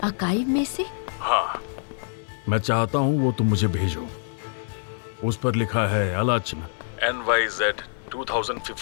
आर्काइव में से? हाँ, मैं चाहता हूँ वो तुम मुझे भेजो। उस पर लिखा है आलोचना NYZ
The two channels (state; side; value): silent; right; digital silence